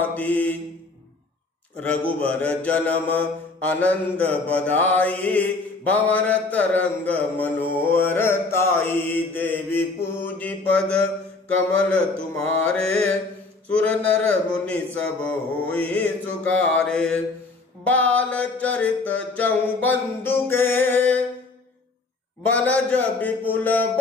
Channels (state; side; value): quieter; right; 3.7 dB